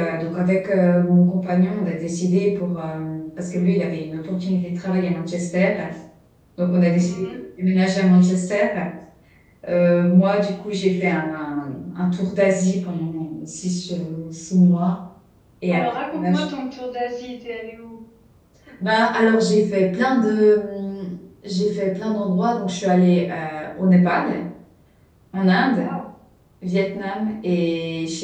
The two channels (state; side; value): identical; both; correlation 1.00